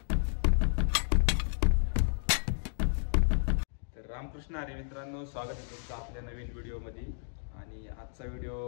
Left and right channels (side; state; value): right; silent; digital silence